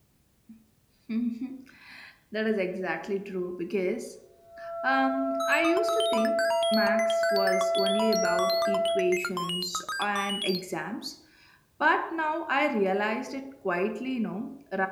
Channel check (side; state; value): both; identical; correlation 1.00